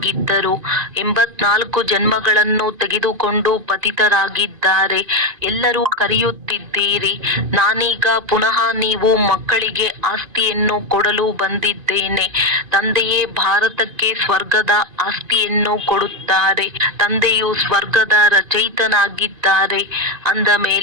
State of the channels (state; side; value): late; left; 2.4 ms